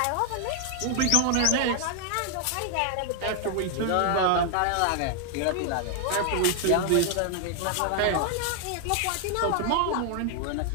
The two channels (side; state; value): both; different; correlation 0.00